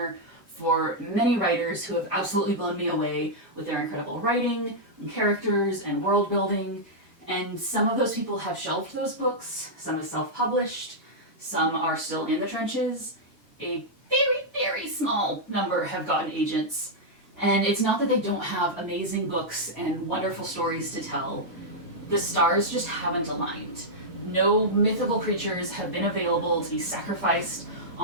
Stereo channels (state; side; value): normal; both; correlation -0.07